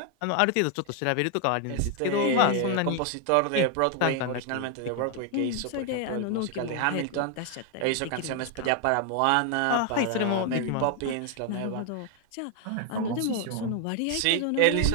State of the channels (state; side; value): different; both; correlation 0.00